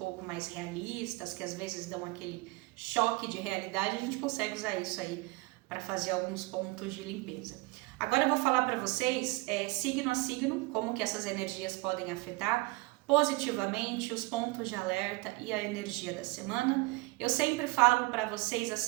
mais realistas, que às vezes dão aquele choque de realidade, a gente consegue usar isso aí para fazer alguns pontos de limpeza. Agora eu vou falar para vocês, signo a signo, como que essas energias podem afetar positivamente os pontos de alerta e a energia da semana. Eu sempre falo para vocês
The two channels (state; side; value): quieter; left; 23.1 dB